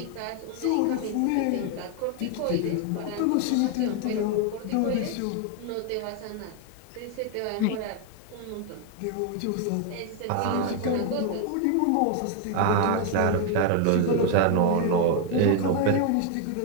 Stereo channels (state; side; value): different; both; correlation 0.01